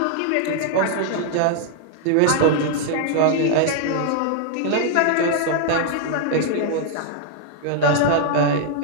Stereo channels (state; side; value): different; both; correlation 0.00